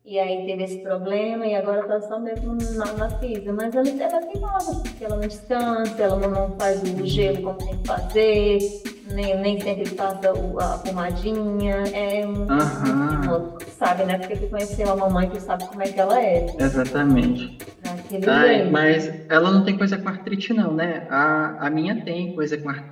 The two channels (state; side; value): identical; both; correlation 1.00